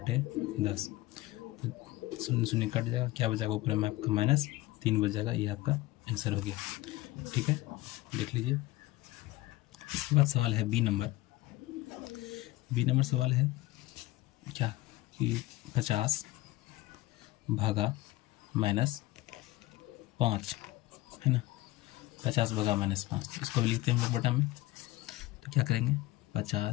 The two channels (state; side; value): quieter; right; 18.2 dB